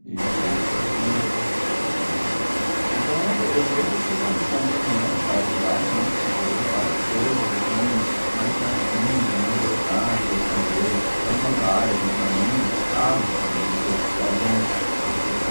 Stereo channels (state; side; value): inverted; both; correlation -1.00